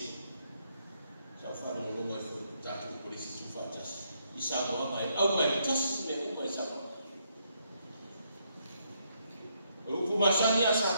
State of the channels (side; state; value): both; inverted; correlation -0.75